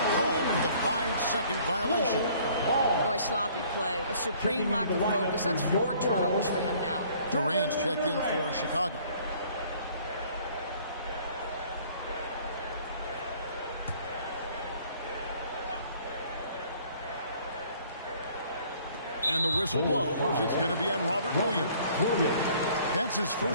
called for the 5-second violation. Boy, sloppy play. A supreme lack of focus. That's 4 turnovers for him now. Durant's checked in for Chicago. And the whistle blows. It's going to be on Robert Williams. That's his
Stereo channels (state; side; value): inverted; both; correlation -0.56